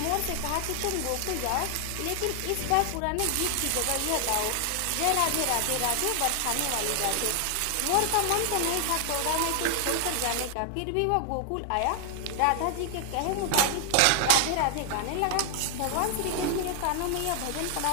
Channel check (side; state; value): both; different; correlation 0.00